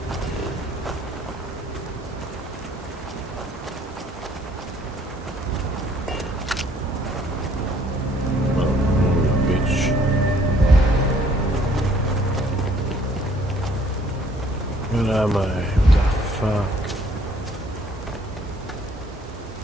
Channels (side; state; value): both; normal; correlation 0.61